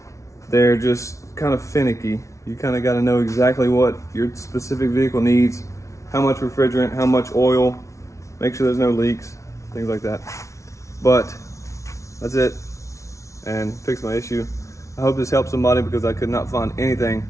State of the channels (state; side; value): late; right; 0.14 ms